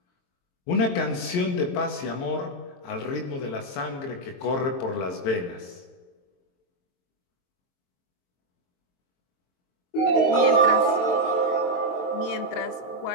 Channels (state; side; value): late; right; 22 ms